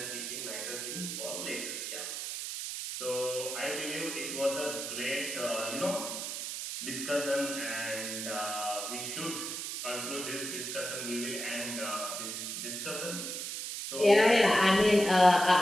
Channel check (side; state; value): right; noise; hiss, 5 dB below the sound